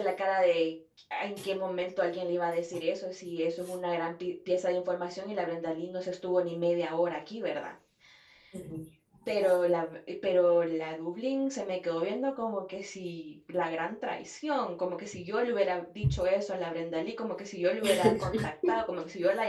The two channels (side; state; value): both; identical; correlation 1.00